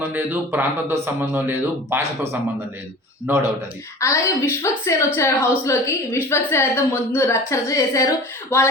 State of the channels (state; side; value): normal; both; correlation 0.39